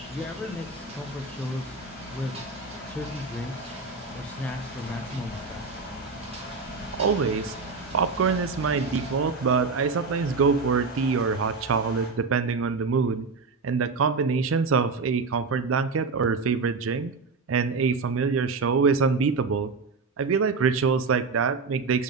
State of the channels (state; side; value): quieter; left; 4.5 dB